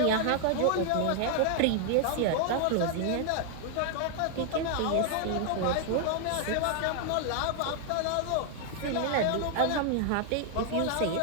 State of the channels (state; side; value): different; both; correlation 0.00